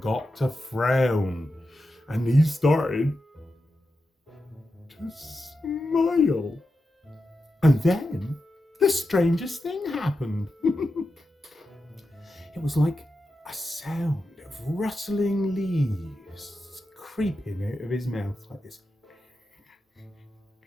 to frown, and he started to smile. And then the strangest thing happened. It was like a sound of rustling leaves creeping out of his mouth like this.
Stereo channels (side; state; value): both; normal; correlation 0.89